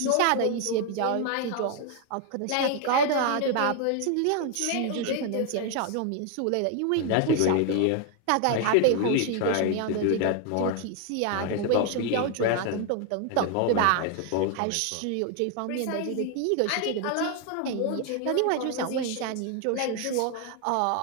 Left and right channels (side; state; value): both; different; correlation 0.00